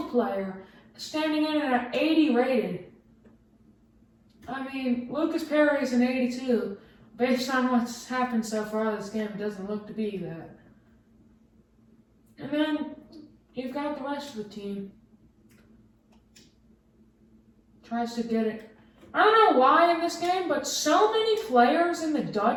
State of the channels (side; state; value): both; identical; correlation 1.00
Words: player, standing in at an 80 rated. I mean, Lucas Perry is an 82. Based on what's happened so far this game, it doesn't look to be that. And then you've got the rest of the team. Tries to get it. I don't know why in this game, but so many players in the